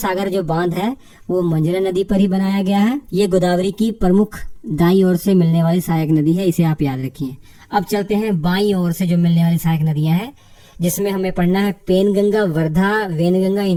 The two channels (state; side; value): identical; both; correlation 1.00